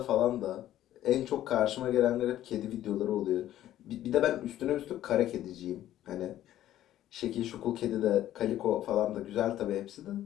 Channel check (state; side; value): quieter; right; 12.8 dB